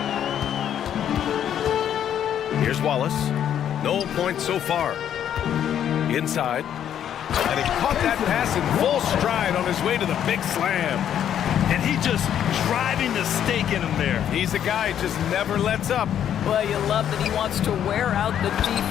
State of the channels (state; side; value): quieter; right; 9.8 dB